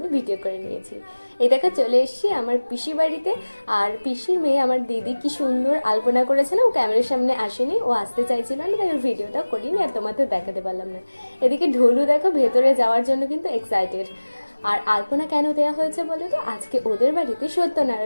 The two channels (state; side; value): inverted; both; correlation -1.00